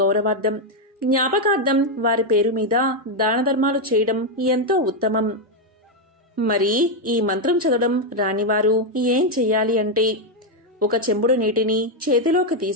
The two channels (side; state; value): both; normal; correlation 0.03